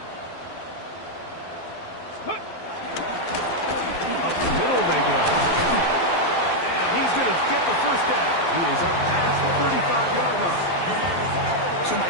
Up the middle they go. And he's going to get the first down. He is up past the 35-yard line. So,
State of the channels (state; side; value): late; right; 12 ms